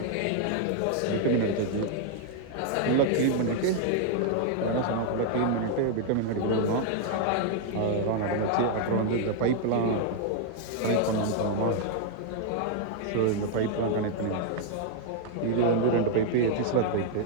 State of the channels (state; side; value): different; both; correlation 0.00